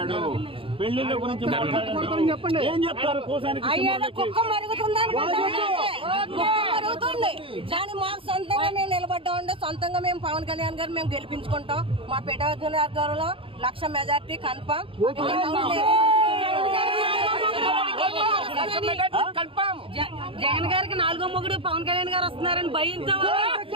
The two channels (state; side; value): late; left; 0.26 ms